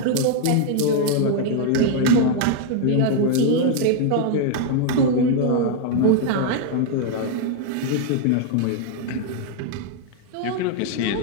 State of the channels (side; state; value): both; different; correlation 0.00